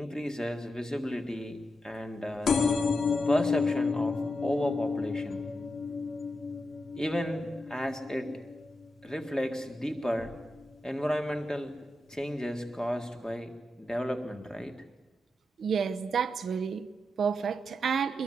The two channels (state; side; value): normal; both; correlation 0.86